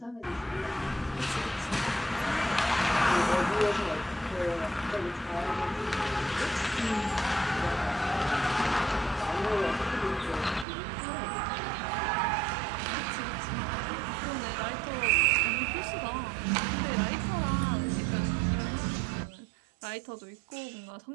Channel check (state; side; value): drops out; left; at 10.7 s